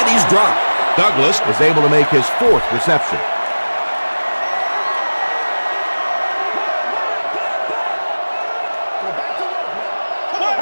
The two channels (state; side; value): inverted; both; correlation -1.00